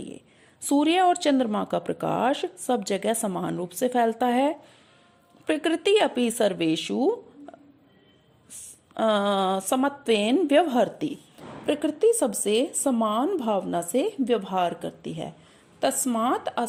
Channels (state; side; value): identical; both; correlation 1.00